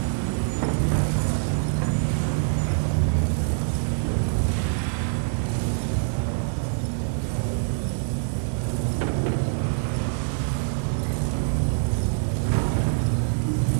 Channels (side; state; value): left; silent; digital silence